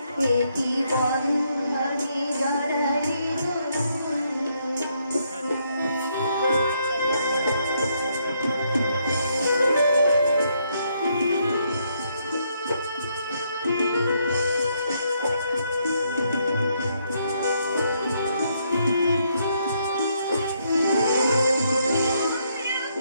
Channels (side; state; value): both; inverted; correlation -0.74